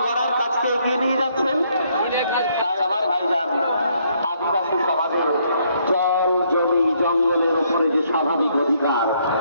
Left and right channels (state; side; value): inverted; both; correlation -0.70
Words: গড়ার কাজকে এগিয়ে নিয়ে যাচ্ছেন, তাই আমার ভাইজান আদিবাসী সমাজের জল জমি জঙ্গলের উপরে যে স্বাভাবিক অধিকার,